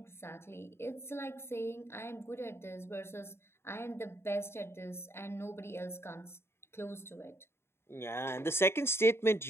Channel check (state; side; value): late; right; 0.12 ms